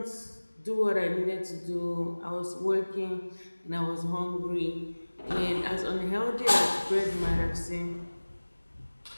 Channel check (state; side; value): inverted; both; correlation -1.00